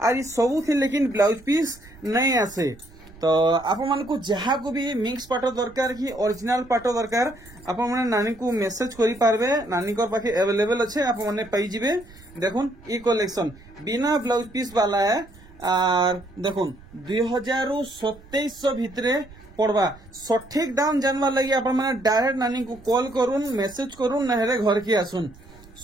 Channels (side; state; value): right; noise; rumble, 22 dB below the sound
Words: और ई सब थी लेकिन ब्लाउज पीस नहीं आसे। तो आपण मन को जहा को भी मिक्स पाटो दरकार की ओरिजिनल पाटो दरकार आपण माने नानी को मेसेज करि पारबे। नानी को पाखे अवेलेबल अच्छे आपण माने पाई जिबे। देखुन ई कलेक्शन बिना ब्लाउज पीस वाला है और देखुन 2700 भितरे पड़वा। सठिक दाम जानवा लगी आपण माने डायरेक्ट नानी को कॉल करूँ मेसेज करूँ नहले घर की आसुन